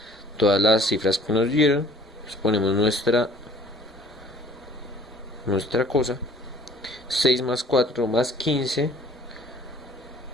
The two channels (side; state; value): both; normal; correlation 0.54